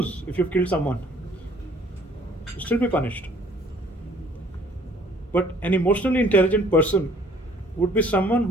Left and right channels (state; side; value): normal; both; correlation 0.57